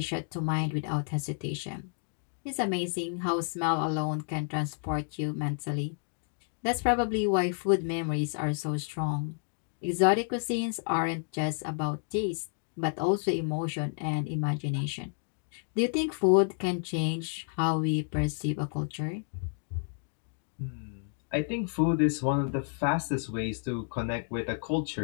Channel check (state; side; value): silent; right; 57 dB below the other